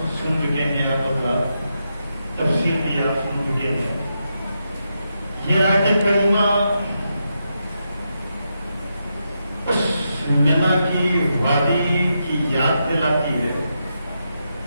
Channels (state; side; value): inverted; both; correlation -0.84